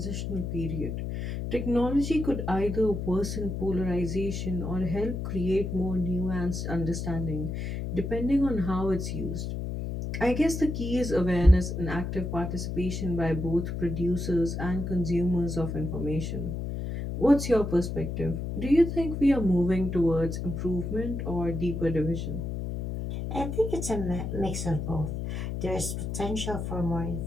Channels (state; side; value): noise; left; hum, 4 dB below the sound